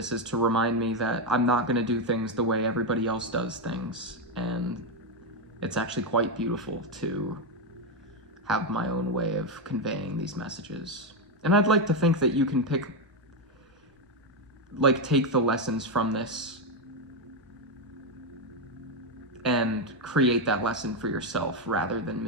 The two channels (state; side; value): normal; both; correlation 0.06